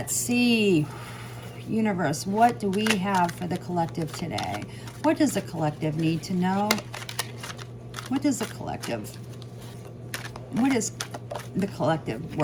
see, universe, what do we have for the collective today? What does the collective need to know? What is the collective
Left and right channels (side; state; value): both; identical; correlation 1.00